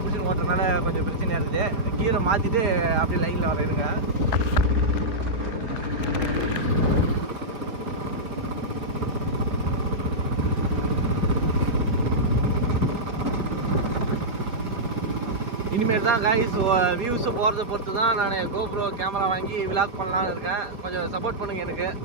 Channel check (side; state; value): left; late; 4.4 ms